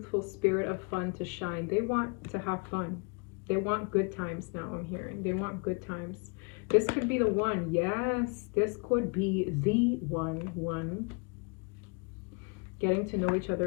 spirit of fun to shine. They want to have fun. They want good times now, I'm hearing. They want good times. This could be the one. Yes, this could be the one. Getting to know each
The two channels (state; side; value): quieter; right; 35.3 dB